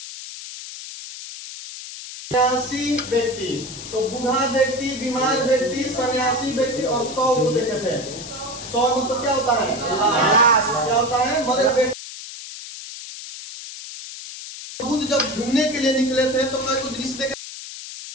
व्यक्ति। तो बूढ़ा व्यक्ति, बीमार व्यक्ति, सन्यासी व्यक्ति और 100 को देखे थे। 100 मतलब क्या होता है? क्या होता है? मरे व्यक्ति। बुद्ध जब घूमने के लिए निकले थे तो कई दृश्य देखे।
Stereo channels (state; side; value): noise; left; hiss, 11 dB below the sound